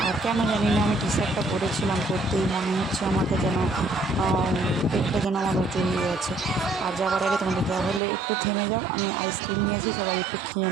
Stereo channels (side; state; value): left; drops out; at 8.0 s